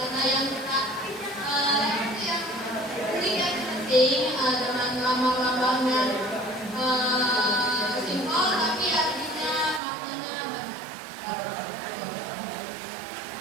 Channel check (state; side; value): drops out; left; at 9.8 s